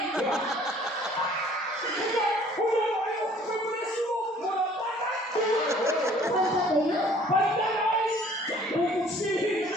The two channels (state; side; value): normal; both; correlation 0.55